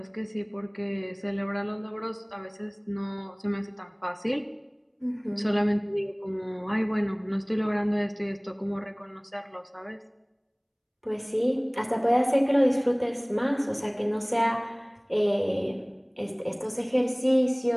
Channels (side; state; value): both; identical; correlation 1.00